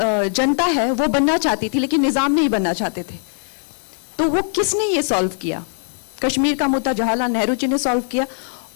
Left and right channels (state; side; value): silent; right; 62 dB below the other